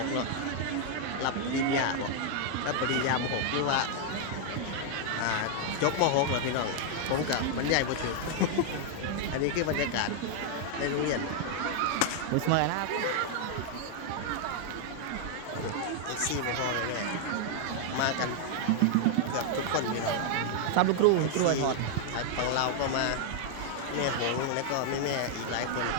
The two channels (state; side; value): different; both; correlation 0.00